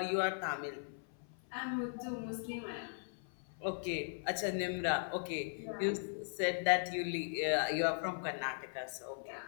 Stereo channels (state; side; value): silent; right; 52 dB below the other